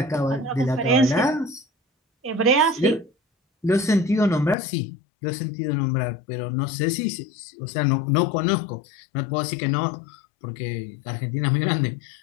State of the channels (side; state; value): right; drops out; at 4.5 s